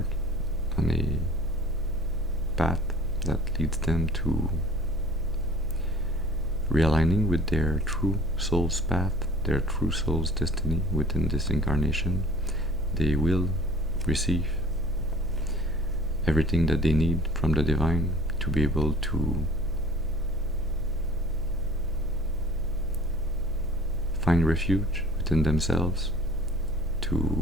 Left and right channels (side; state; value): right; noise; hum, 15 dB below the sound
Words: on a path that leads them to realigning with their true soul's path, their true soul's destiny within this incarnation, they will receive everything that they need from the divine to be able to find refuge within themselves,